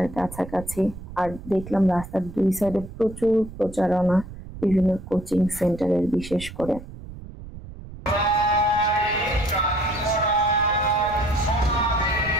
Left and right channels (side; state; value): right; noise; rumble, 14 dB below the sound